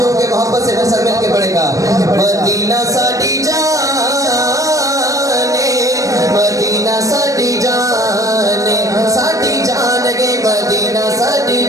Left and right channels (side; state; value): left; late; 0.16 ms